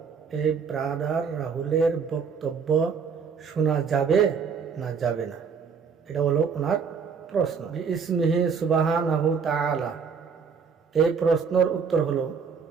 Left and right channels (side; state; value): left; quieter; 6.0 dB